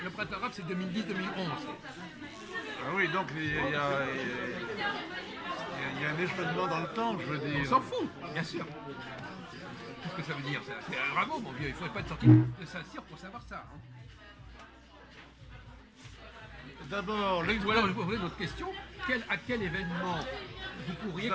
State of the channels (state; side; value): identical; both; correlation 1.00